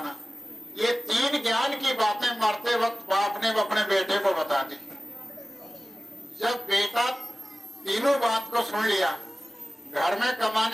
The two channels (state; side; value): normal; both; correlation 0.97